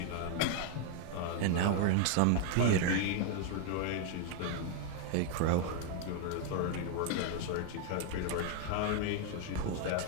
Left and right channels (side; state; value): both; different; correlation 0.00